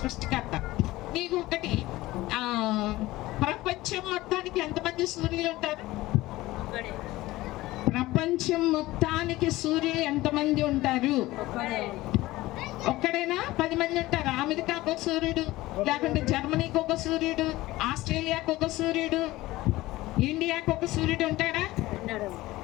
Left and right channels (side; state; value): right; quieter; 18.1 dB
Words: నీకు ఒకటి, ప్రపంచం మొత్తానికి ఎంతమంది సూర్యులు ఉంటారు? ప్రపంచం మొత్తానికి సూర్యులు ఎంతమంది ఉంటారు? ఒక్కడైనా 10 మంది ఉంటారు. అమెరికాకు ఒక సూర్యుడు, లేకుంటే జర్మనీకి ఒక సూర్యుడు, ఆస్ట్రేలియాకు ఒక సూర్యుడు, ఇండియాకు ఒక సూర్యుడు ఉంటాడా?